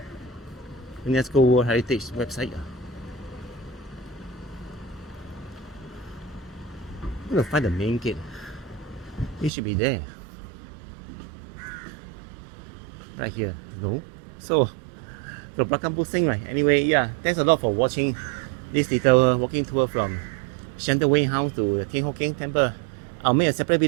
UNESCO World Heritage website. I'm gonna find the main gate. It should be there. Right here. No. So, the Belakang Pusing, right? Anyway, yeah, thanks a lot for watching this little walking tour from Shenton Wing House to the Thian Temple. I'll make a separate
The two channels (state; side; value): drops out; left; at 9.5 s